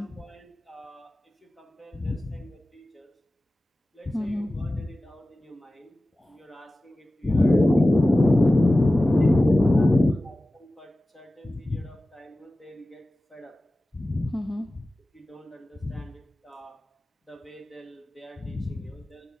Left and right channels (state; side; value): normal; both; correlation 0.96